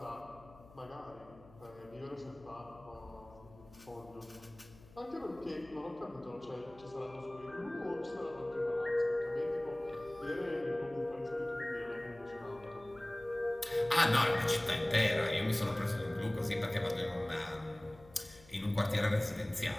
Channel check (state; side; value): noise; left; hum, 23 dB below the sound